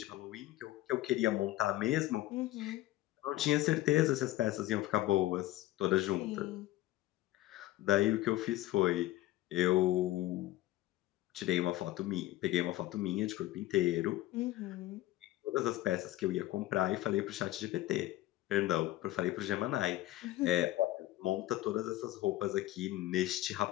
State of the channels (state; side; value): quieter; right; 16.0 dB